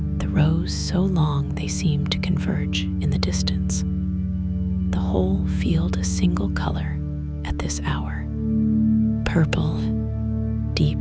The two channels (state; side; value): identical; both; correlation 1.00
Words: The rows so long they seem to converge in the distance. The whole field a single color at this hour. Purple, deep